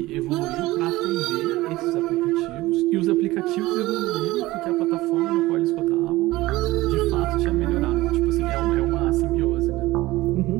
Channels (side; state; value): left; quieter; 18.6 dB